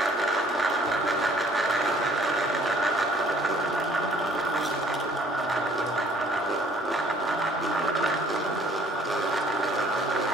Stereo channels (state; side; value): normal; both; correlation 0.57